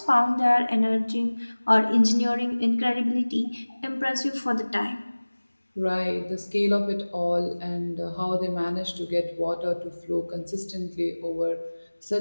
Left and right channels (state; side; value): inverted; both; correlation -1.00